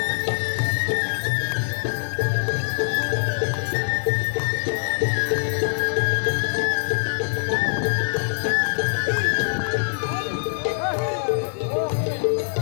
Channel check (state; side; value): silent; right; digital silence